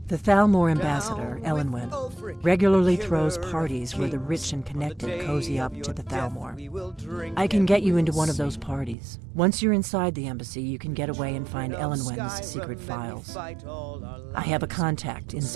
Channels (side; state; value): left; drops out; at 9.0 s